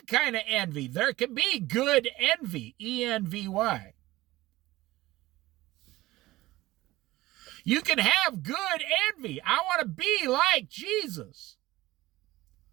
kind of envy. There can be good envy, E-N-V-Y. You can have good envy. I want to be like Jesus.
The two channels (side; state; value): left; quieter; 17.8 dB